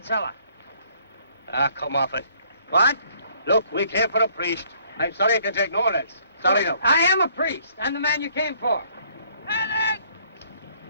Ah, come off it. What? Look, we came for a priest. I'm sorry I can take no less. Sorry no. I am a priest. I'm the man you came for. Alec!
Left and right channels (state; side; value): inverted; both; correlation -0.62